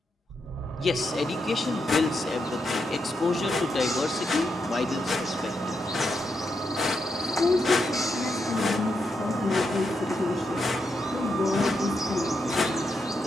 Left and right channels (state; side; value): normal; both; correlation 0.83